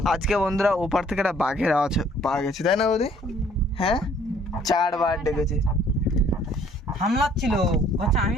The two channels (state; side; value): normal; both; correlation 0.59